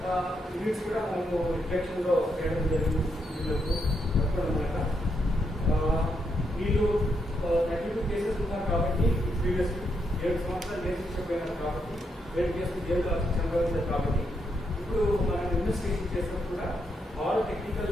యూనిట్స్ కూడా మనము డిటెక్షన్లో చేయడం జరిగింది. వీళ్ళకు అనమాట వీళ్ళు 32 కేసెస్ ఉన్నారు కాబట్టి ప్రీవియస్ 7 సంవత్సరాలు జైలు శిక్ష పోయినారు కాబట్టి 7 కేసులు జైలు శిక్ష అనుభవించారు కాబట్టి ఇప్పుడు మనం ఇన్వెస్టిగేషన్ చేసినప్పుడు కూడా ఆల్ టెక్నికల్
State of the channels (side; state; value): both; normal; correlation 0.80